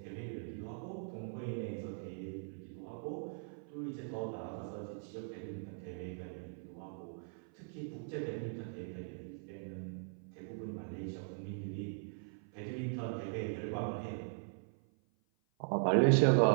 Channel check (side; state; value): left; silent; 51 dB below the other